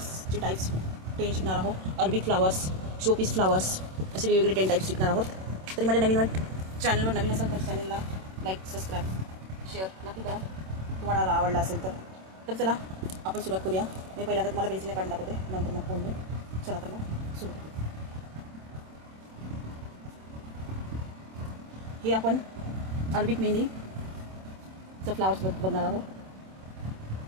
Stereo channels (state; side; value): late; left; 27 ms